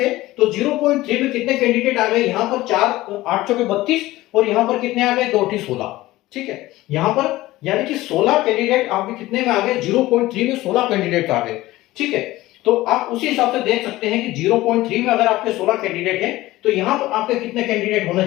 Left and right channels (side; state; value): right; quieter; 17.5 dB